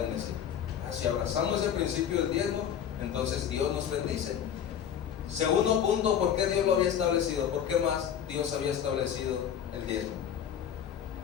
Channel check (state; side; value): quieter; right; 9.1 dB